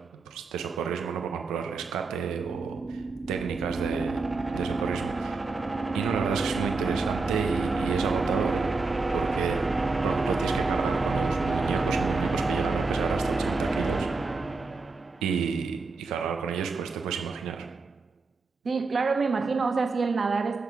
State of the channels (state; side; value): quieter; left; 4.0 dB